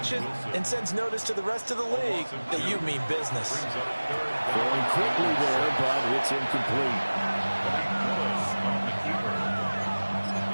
and sends notice to the rest of the league that you mean business. Going quickly there, but it's incomplete.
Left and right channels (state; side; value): inverted; both; correlation -1.00